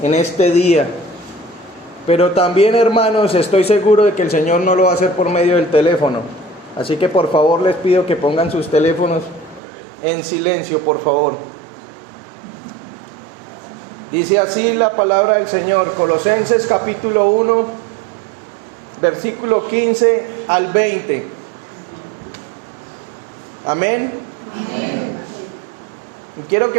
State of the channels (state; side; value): drops out; left; at 9.6 s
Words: en este día. Pero también, hermanos, estoy seguro de que el Señor no lo va a hacer por medio del teléfono. Así que por favor les pido que pongan sus teléfonos en silencio, por favor. Dice así la palabra del Señor, Colosenses capítulo 1, versículo 15 al 20. Amén. Amén. Y quiero